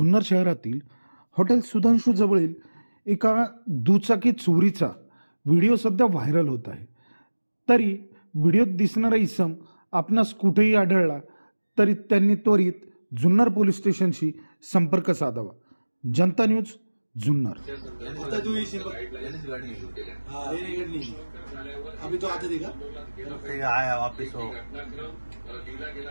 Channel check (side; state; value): both; inverted; correlation -1.00